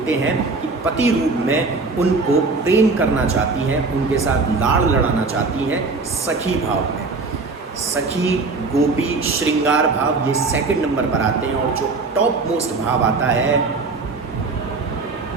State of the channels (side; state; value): left; quieter; 3.9 dB